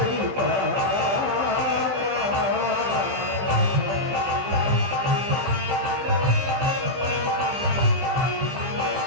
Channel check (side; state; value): left; late; 16 ms